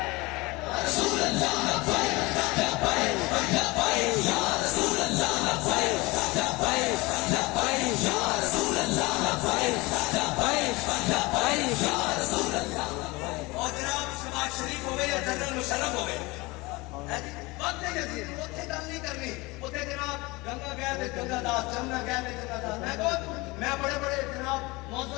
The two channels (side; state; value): right; quieter; 23.3 dB